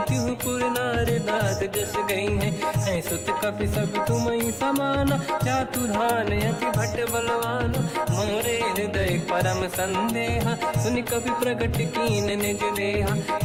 तिहुपुर नार दाद जस गई है सुत कपि सब तुम समाना चातुधान अति भट्ट बलवान मोरे हृदय परम संदेहा सुनि कपि प्रकट कीन निज देहा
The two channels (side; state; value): both; identical; correlation 1.00